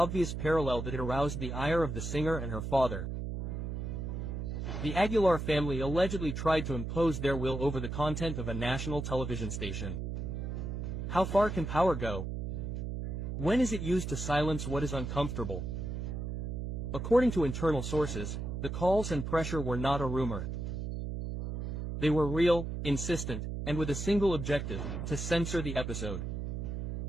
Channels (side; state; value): right; noise; hum, 4 dB below the sound